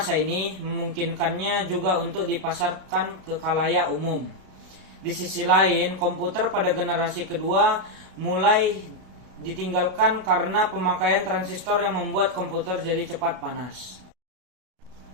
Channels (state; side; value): late; left; 33 ms